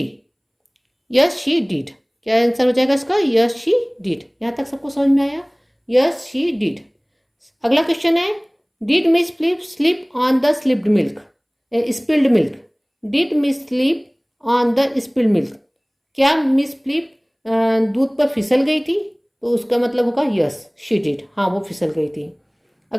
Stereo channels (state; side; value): identical; both; correlation 1.00